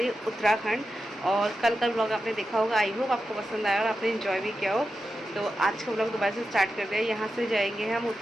है उत्तराखंड और कल का ब्लॉग आपने देखा होगा। आई होप आपको पसंद आया और आपने इन्जॉय भी किया हो। तो आज का ब्लॉग दोबारा से स्टार्ट कर दिया है। यहाँ से जाएंगे हम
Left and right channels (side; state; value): both; normal; correlation 0.90